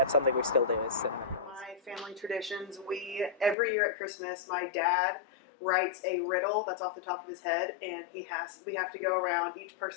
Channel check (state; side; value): drops out; right; at 3.6 s